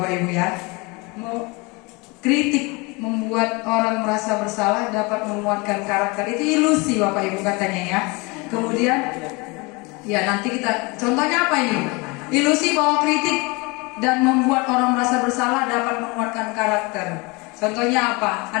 Ibu ya. Kritik membuat orang merasa bersalah dapat menguatkan karakter. Itu ilusi Bapak Ibu katanya ya. Kemudian ya nanti kita contohnya apa ini? Ilusi bahwa kritik dan membuat orang merasa bersalah dapat menguatkan karakter. Contohnya apa?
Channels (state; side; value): quieter; right; 27.1 dB